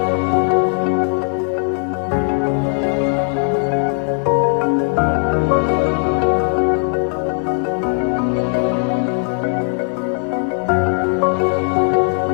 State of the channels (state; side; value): silent; right; 61 dB below the other